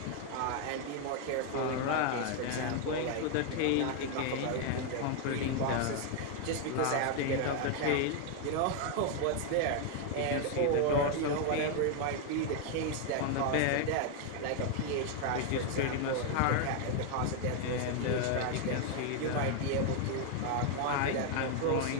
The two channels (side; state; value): both; different; correlation 0.01